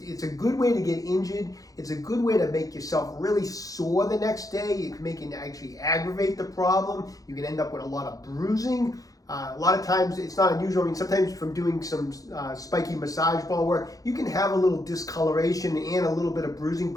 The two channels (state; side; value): late; right; 0.17 ms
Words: a good way to get injured. It's a good way to make yourself really sore the next day. You can make it actually aggravate the problem. You can end up with a lot of bruising. A lot of times it's not unusual. I mean, sometimes from doing some spiky massage ball work, you can have a little discoloration and a little bit of bruising,